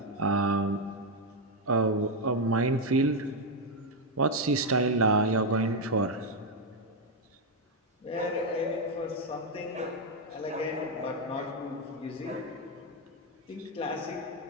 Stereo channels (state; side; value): normal; both; correlation 0.04